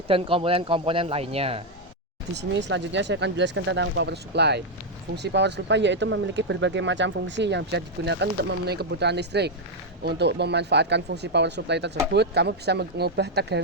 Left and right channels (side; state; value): both; normal; correlation 0.01